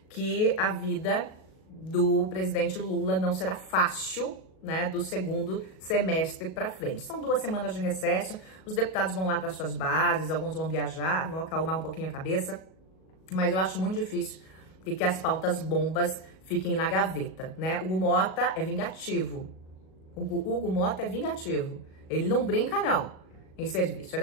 que a vida do presidente Lula não será fácil, né, do segundo semestre para frente. São 2 semanas de recesso, os deputados vão lá para suas bases, alguns vão viajar, vão acalmar um pouquinho a cabeça, mas eu acho muito difícil que as pautas bombas fiquem na gaveta, né? Hugo Mota é vingativo. Hugo Mota é vingativo. Ele não brinca, não, em serviço.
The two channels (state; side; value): late; right; 37 ms